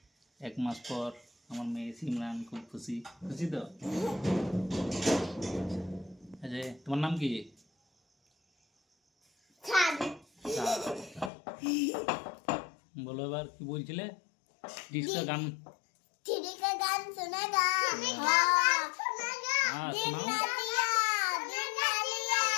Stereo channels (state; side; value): drops out; right; at 11.3 s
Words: 1 মাস পর। আমার মেয়ে সিমরান খুব খুশি খুশি তো। আচ্ছা, তোমার নাম কি? বলো এবার কি বলছিলে? ডিস্কা গান सुनेगा हाँ सुनाओ।